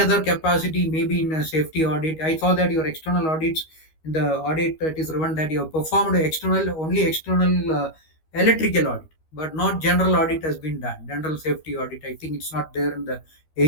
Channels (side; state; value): right; late; 13 ms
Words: capacity, maybe in a safety audit, I saw that your external audits, in the audit that is written that you have performed only external electrical audit, but not general audit has been done. General safety audit, I think it's not there in the